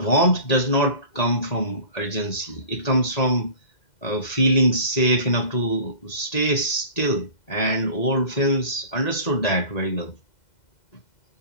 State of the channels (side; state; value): right; late; 2.0 ms